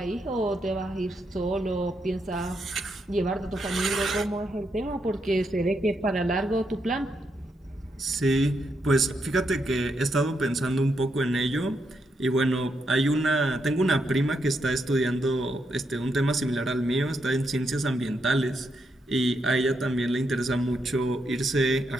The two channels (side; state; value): both; normal; correlation 0.80